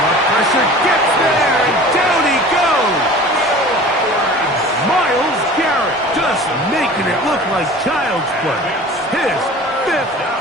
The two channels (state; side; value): normal; both; correlation 0.41